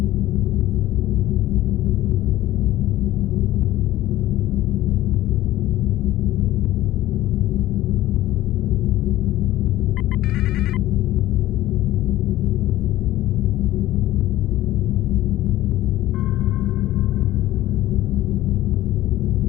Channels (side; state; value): right; quieter; 15.2 dB